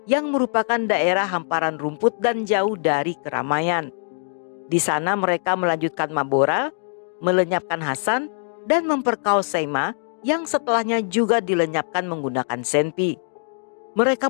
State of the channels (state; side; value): silent; right; 63 dB below the other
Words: yang merupakan daerah hamparan rumput dan jauh dari keramaian. Di sana mereka melanjutkan mabora, melenyapkan Hasan, dan memperkaos Seima yang setelahnya juga dilenyapkan menggunakan senpi. Mereka